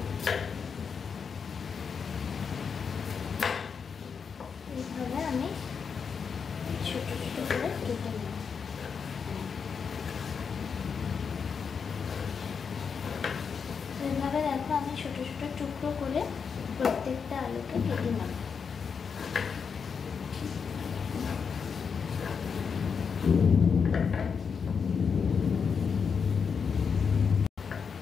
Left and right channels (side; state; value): right; quieter; 6.1 dB